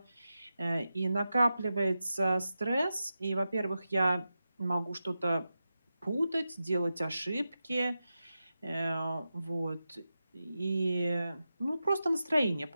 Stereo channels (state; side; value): inverted; both; correlation -0.91